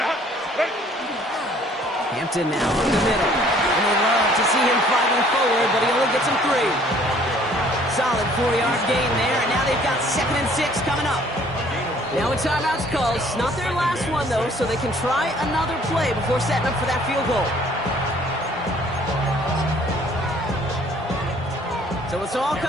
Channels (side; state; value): both; normal; correlation 0.57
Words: Hampton now from the middle. And they love to see him fighting forward, but he only gets him 3. Solid 4-yard gain there, and now they've got 2nd and 6 coming up. Now a timeout's called. It's not their last one, though, so they can try another play before setting up for that field goal. So it's all